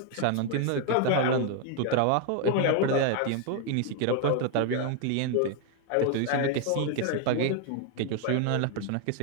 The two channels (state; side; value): different; both; correlation 0.00